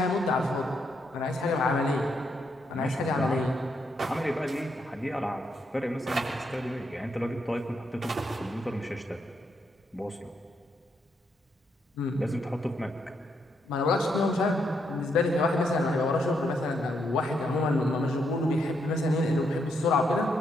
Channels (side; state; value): both; normal; correlation 0.78